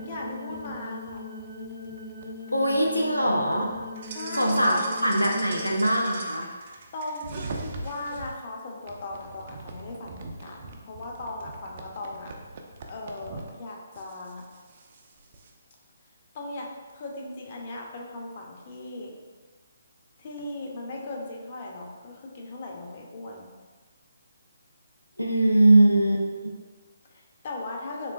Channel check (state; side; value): inverted; both; correlation -0.88